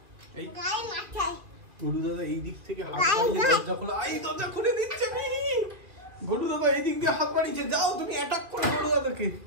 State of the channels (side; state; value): left; late; 2.3 ms